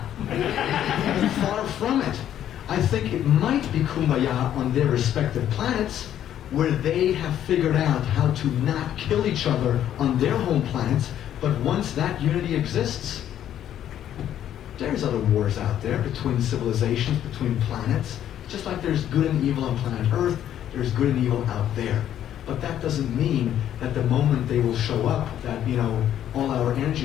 Far from it. I think it might be kumbaya on their respective planets, where they have figured out how to not kill each other on their home planets, but once that unity exists, there's other wars out there between civilizations, between planets. Just like there's good and evil on planet Earth, there's good and evil out there. But that doesn't mean that the moment they will show up, that, you know, all our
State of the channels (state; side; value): quieter; right; 10.8 dB